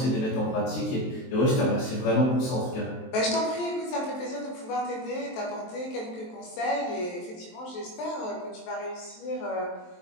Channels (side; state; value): right; late; 23 ms